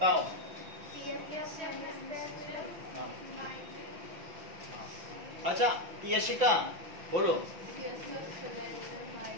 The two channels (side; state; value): left; late; 5.7 ms